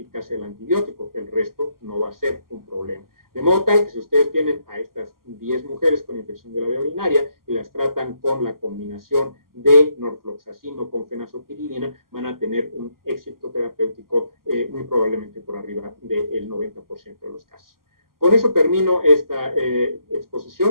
del antibiótico, el resto no va a ser un problema. De modo tal que si ustedes tienen a estas 10 mujeres con infección de la vía urinaria y las tratan con la combinación de norfloxacino con fenazopiridina, van a tener un éxito terapéutico muy probablemente por arriba del 90% de los casos. Con eso termino esta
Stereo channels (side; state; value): left; late; 0.92 ms